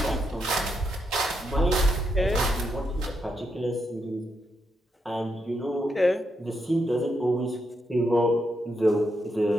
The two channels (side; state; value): both; normal; correlation 0.81